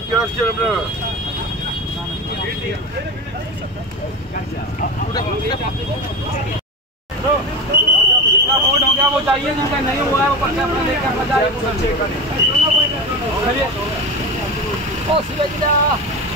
রাখছেন আপনারা? जितना वोट हो गया वो चाहिए, जिनका नहीं हुआ है वो पर्चा अपना लेकर अपना जाए। ओ सिलेक्टा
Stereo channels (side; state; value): both; normal; correlation 0.24